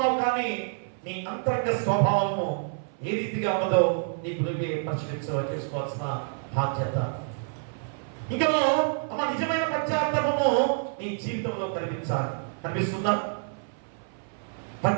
కానీ నీ అంతరంగ స్వభావము ఏ రీతిగా ఉన్నదో నీకు నువ్వే చేసుకోవాల్సిన బాధ్యత. ఇంకా నిజమైన పశ్చాత్తాపము నీ జీవితంలో కనిపిస్తుందా?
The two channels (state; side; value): silent; left; 57 dB below the other